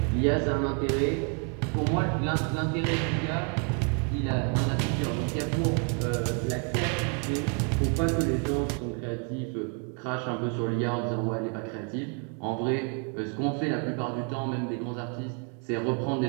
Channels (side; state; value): left; quieter; 39.9 dB